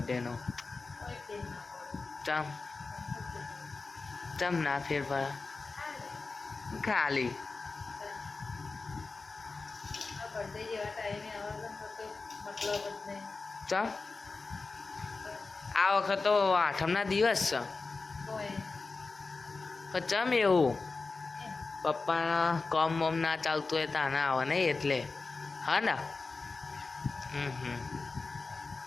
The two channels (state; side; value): quieter; right; 4.0 dB